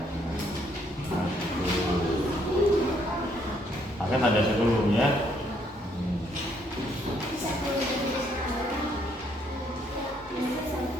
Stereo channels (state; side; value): normal; both; correlation 0.69